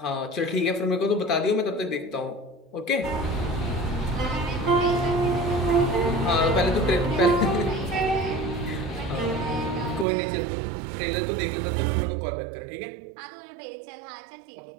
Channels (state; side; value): drops out; left; at 10.1 s